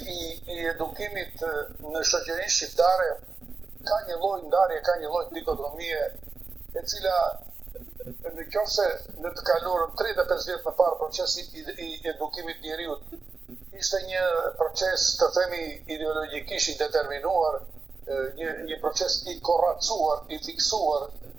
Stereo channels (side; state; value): left; quieter; 4.4 dB